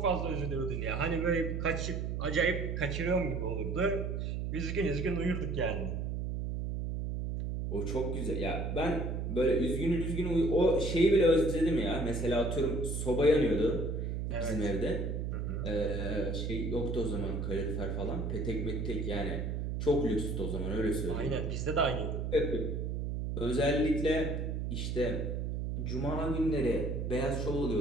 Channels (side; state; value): right; noise; hum, 2 dB below the sound